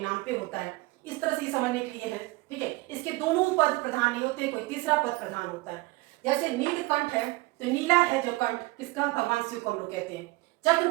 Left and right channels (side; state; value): left; quieter; 21.6 dB